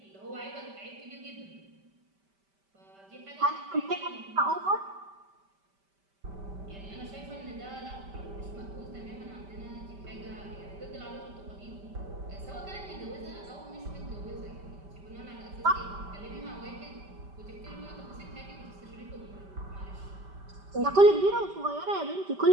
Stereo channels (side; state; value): left; late; 5.1 ms